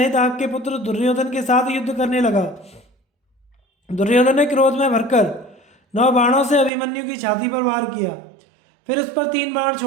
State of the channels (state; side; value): drops out; left; at 6.7 s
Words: आपके पुत्र दुर्योधन के साथ युद्ध करने लगा। दुर्योधन ने क्रोध में भरकर 9 बाणों से अभिमन्यु की छाती पर वार किया, फिर उस पर 3 बाण